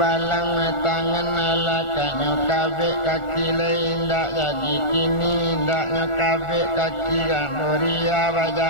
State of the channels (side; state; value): right; late; 1.4 ms